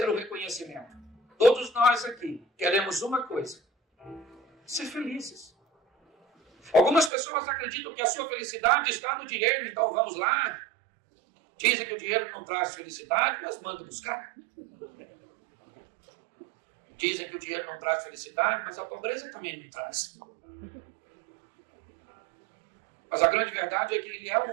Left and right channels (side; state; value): left; drops out; at 7.1 s